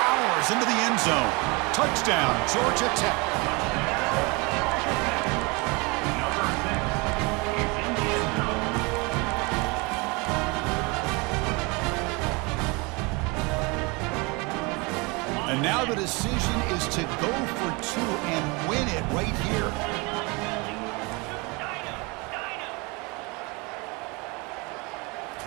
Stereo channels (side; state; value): left; quieter; 27.7 dB